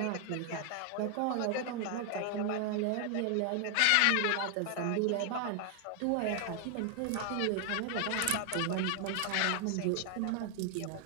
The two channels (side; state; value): both; different; correlation 0.00